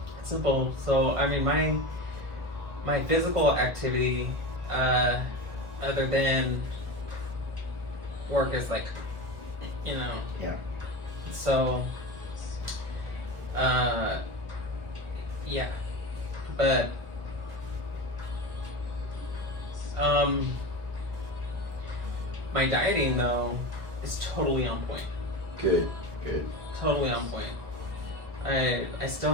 It's simple. So, I mean, my physical activity, other than work, is like, you know. Yeah. So, yeah. But, my dieting though is totally on point. Good, good. Totally on point. I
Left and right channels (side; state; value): left; late; 1.4 ms